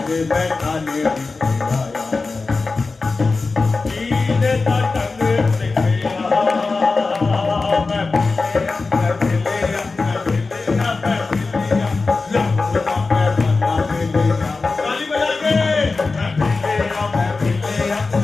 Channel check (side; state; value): right; quieter; 3.9 dB